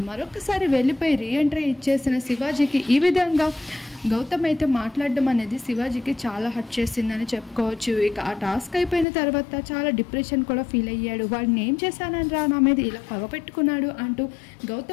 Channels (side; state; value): right; drops out; at 9.1 s